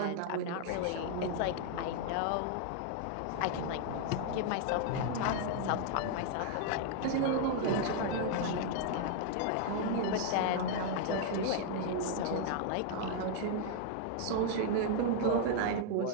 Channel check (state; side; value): different; both; correlation 0.00